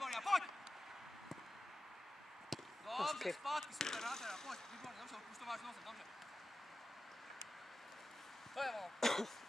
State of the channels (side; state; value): both; normal; correlation 0.93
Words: a pojď! Dobře, zpátky, super, nádhera, pojď, výborně, dobře, už to máš nosem, dobře. To je ono.